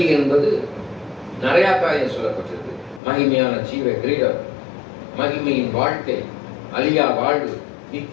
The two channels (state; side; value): drops out; right; at 3.0 s